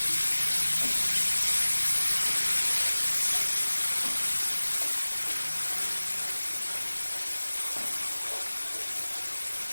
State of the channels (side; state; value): both; inverted; correlation -1.00